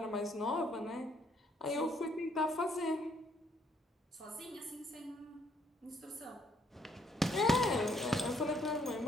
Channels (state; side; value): normal; both; correlation 0.68